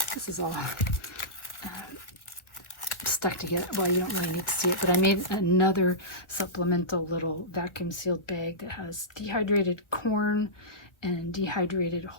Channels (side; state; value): right; late; 1.4 ms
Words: this is all stuck together, well, you don't really need to see it, but I made another supplemental little vacuum sealed bag that has dehydrated corn and dehydrated